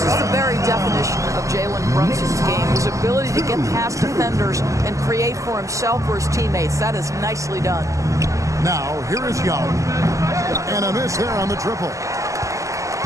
the very definition of Jalen Brunson's game, his ability to get past defenders and create for himself or his teammates. That is nicely done. Now, here is Young. And a miss there on the triple.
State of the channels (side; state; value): left; late; 0.16 ms